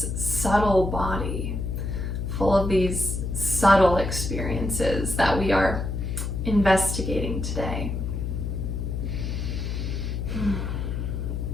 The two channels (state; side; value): noise; left; hum, 3 dB below the sound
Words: subtle body full of these subtle experiences that we are investigating today.